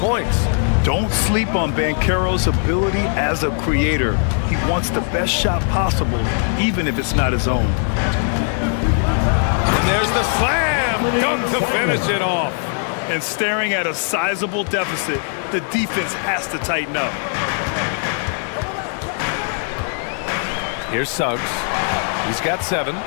Don't sleep on Banchero's ability as a creator. He wants the best shot possible, even if it's not his own. And there's the slam dunk to finish it off. And staring at a sizable deficit, the defense has to tighten up. Here's Suggs. He's got 7.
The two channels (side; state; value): right; silent; 55 dB below the other